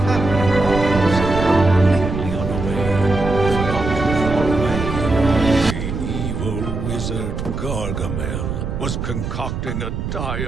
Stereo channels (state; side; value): noise; right; rumble, 4 dB below the sound